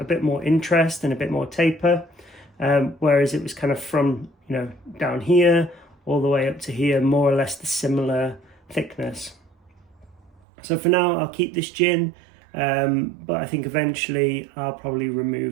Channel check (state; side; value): drops out; left; at 10.3 s